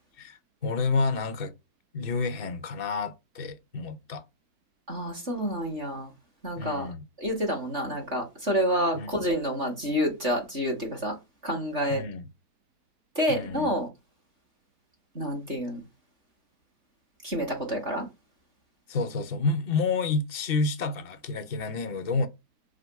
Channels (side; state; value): left; late; 3.4 ms